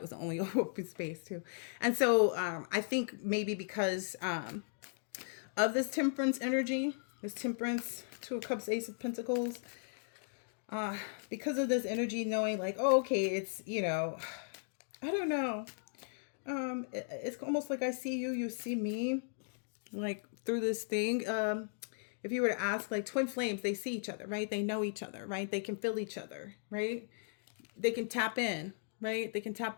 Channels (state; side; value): silent; right; digital silence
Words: was the only open space too. And so I think maybe because of this temperance energy, this temperance, Two of Cups, Ace of Pentacles, because of this energy, knowing like, oh, okay, it's, I don't know. It's almost like I see you, you see me, like through this thing. If you were to ask, like, twin flames, they see each other, right? They know each other, right? They can feel each other, right? They can tap in, right? They can